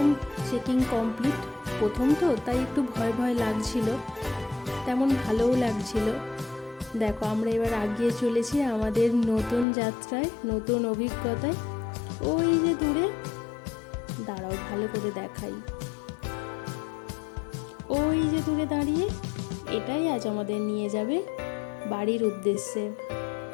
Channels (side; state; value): right; drops out; at 9.7 s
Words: চেকিং কমপ্লিট। প্রথম তো তাই একটু ভয় ভয় লাগছিল, তেমন ভালোও লাগছিল। দেখো, আমরা এবার এগিয়ে চলেছি আমাদের নতুন যাত্রায়, নতুন অভিজ্ঞতায়। ওই যে দূরে, দাঁড়াও ভালো করে দেখাই, ওই যে দূরে দাঁড়িয়ে, এটাই আজ আমাদের নিয়ে যাবে বাড়ির উদ্দেশ্যে।